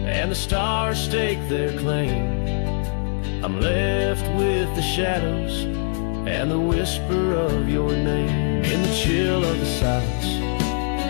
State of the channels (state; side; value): silent; right; 64 dB below the other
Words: the stars stake their claim, I'm left with the shadows and the whisper of your name. In the chill of the silence,